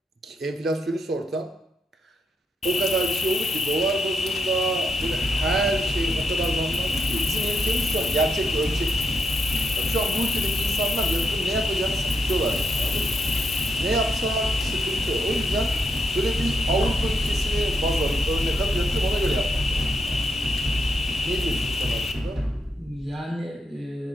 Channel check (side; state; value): both; normal; correlation 0.80